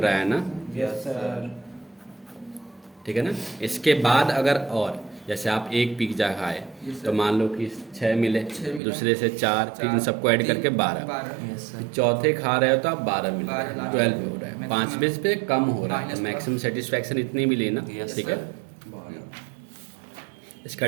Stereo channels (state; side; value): drops out; left; at 8.8 s